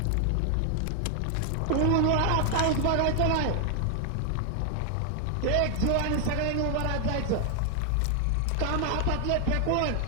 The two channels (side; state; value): both; different; correlation 0.00